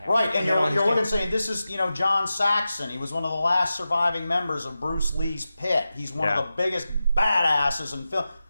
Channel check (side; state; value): both; inverted; correlation -0.93